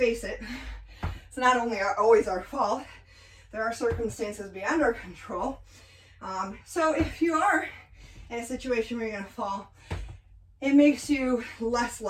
it, it's not only always our fault. There are circumstances beyond our control. So if you are in a situation where you're going to fall, it makes you less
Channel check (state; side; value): identical; both; correlation 1.00